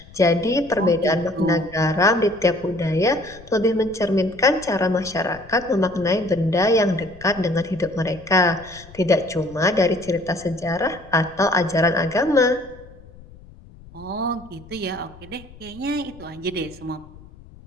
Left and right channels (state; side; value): noise; left; rumble, 21 dB below the sound